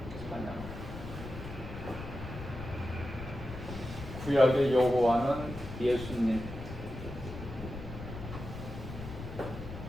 찬양하라. 구약의 여호와는 예수님을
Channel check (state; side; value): noise; left; rumble, 10 dB below the sound